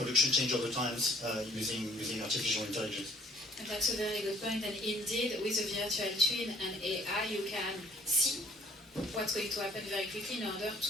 change over times using artificial intelligence? And that's a very good point. And indeed, with a virtual twin and AI, you can see what's going to happen very quickly in order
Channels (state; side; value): normal; both; correlation 0.57